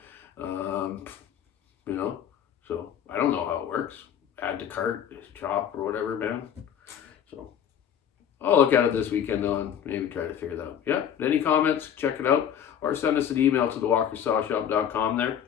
so I don't know how it works. Add to cart, shop, or whatever, man. So I'll look at it this weekend though and maybe try to figure that out. Yeah, any comments, check it out, or send us an email to thewalkersawshop.com there.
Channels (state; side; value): quieter; right; 9.1 dB